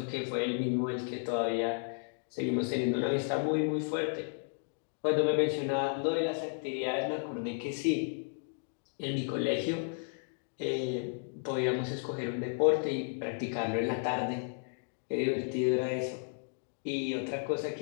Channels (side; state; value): right; silent; 56 dB below the other